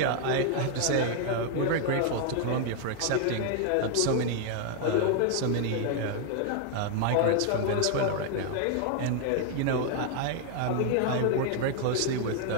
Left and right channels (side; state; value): both; different; correlation 0.00